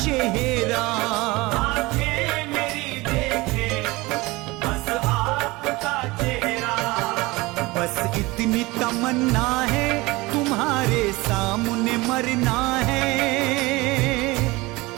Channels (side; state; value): left; quieter; 22.1 dB